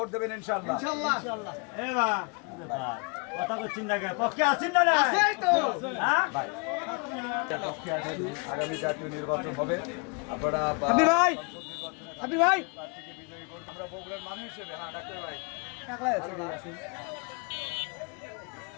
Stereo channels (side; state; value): right; quieter; 34.3 dB